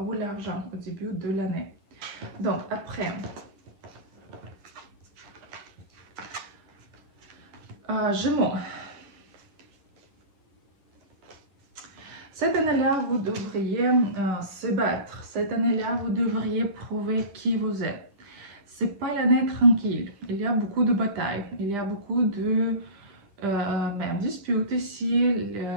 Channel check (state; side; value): late; left; 10 ms